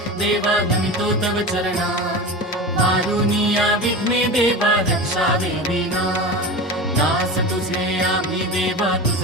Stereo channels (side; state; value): both; normal; correlation 0.28